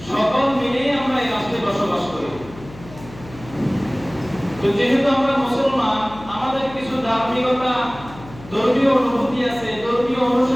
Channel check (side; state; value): left; noise; hum, 17 dB below the sound